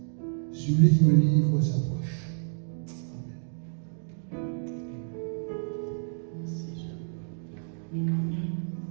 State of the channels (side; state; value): left; silent; digital silence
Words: celui qui me livre s'approche.